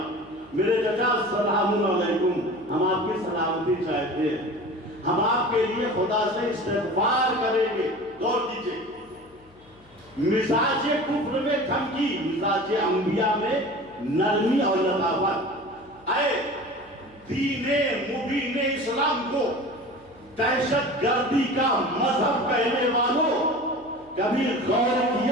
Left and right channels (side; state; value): left; noise; hum, 28 dB below the sound